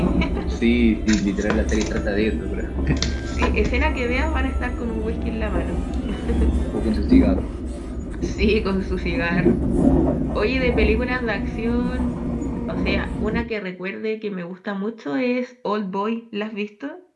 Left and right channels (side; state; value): both; identical; correlation 1.00